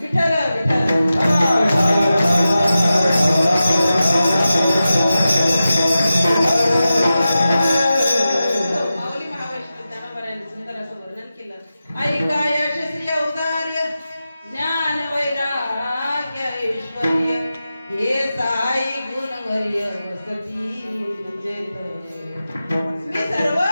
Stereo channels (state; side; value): inverted; both; correlation -0.93